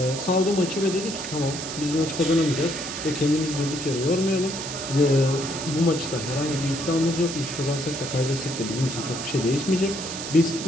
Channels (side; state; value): right; noise; hiss, 7 dB below the sound